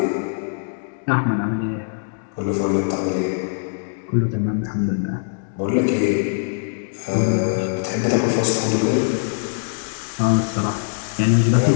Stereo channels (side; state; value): right; silent; digital silence